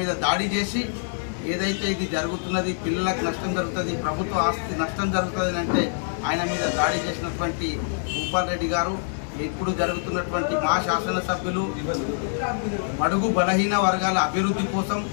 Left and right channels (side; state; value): right; silent; digital silence